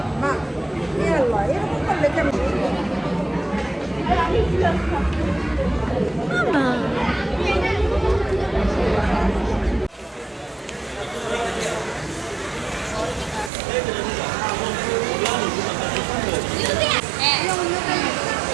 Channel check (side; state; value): left; drops out; at 13.5 s